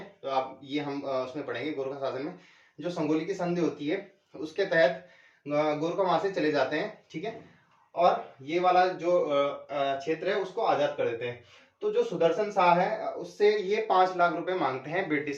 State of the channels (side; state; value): both; identical; correlation 1.00